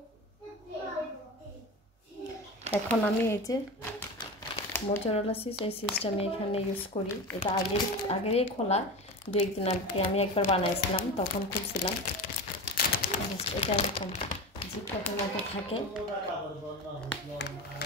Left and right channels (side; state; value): both; normal; correlation 0.27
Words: এখন আমি এই যে মোজারেলা চিজ, এই চিজটা আমি এখানে ইউজ করি। এটা আগেরই খোলা, দু একদিন আগে আমি একবার বানাইছিলাম, তখন খুলছিলাম। এটা এরকম জিপলকের মতো থাকে,